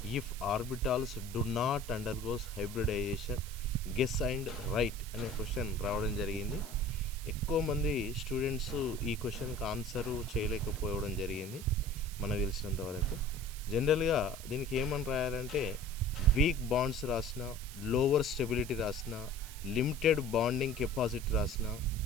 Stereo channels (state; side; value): noise; right; hiss, 14 dB below the sound